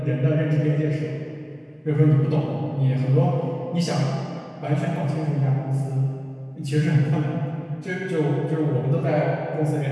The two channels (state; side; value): identical; both; correlation 1.00